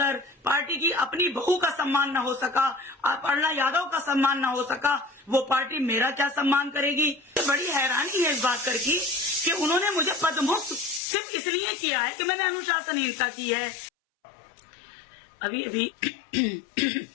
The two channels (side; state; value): right; drops out; at 11.0 s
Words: पार्टी की अपनी बहू का सम्मान न हो सका, अपर्णा यादव का सम्मान न हो सका, वो पार्टी मेरा क्या सम्मान करेगी। बड़ी हैरानी है इस बात कर की कि उन्होंने मुझे पदमुक्त सिर्फ इसलिए किया है कि मैंने अनुशासनहीनता की है। अभी अभी